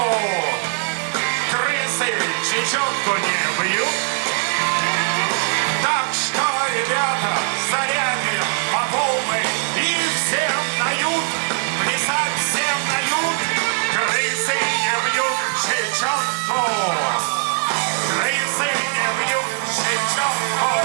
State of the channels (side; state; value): left; silent; digital silence